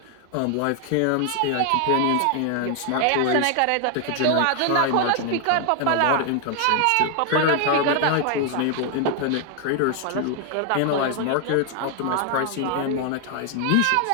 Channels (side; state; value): both; different; correlation 0.00